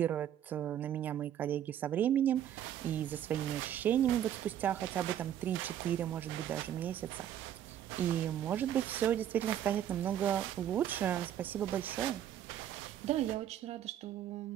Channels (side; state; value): left; quieter; 10.7 dB